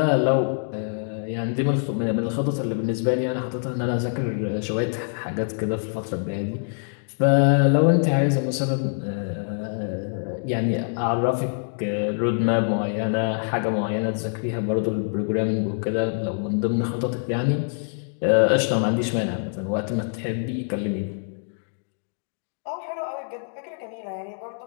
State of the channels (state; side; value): silent; right; digital silence